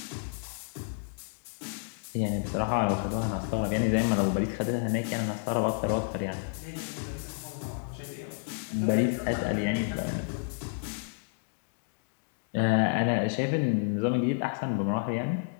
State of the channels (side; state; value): right; silent; digital silence